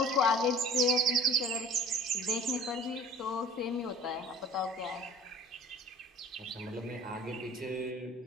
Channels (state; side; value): normal; both; correlation 0.46